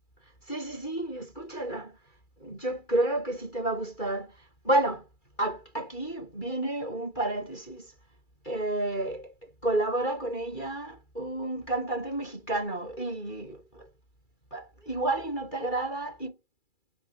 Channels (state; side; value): late; right; 2.3 ms